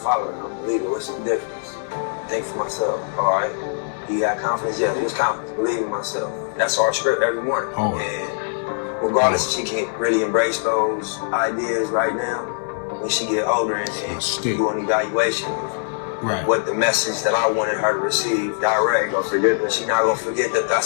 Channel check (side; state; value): right; silent; digital silence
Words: I'm a leader. What's the difference? Think for myself. All right. You got confidence? Yeah, there's confidence. Believe in myself. That's our script every morning. Oh. And regardless if she can really embrace those ideas right now, when she get older and do an evaluation of what the message that I wanted her to receive direct, she's not gonna forget that